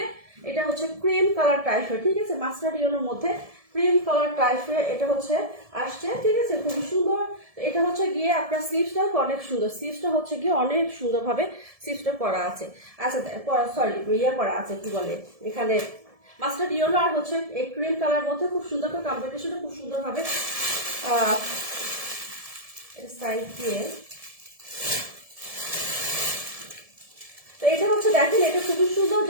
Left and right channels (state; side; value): late; left; 1.7 ms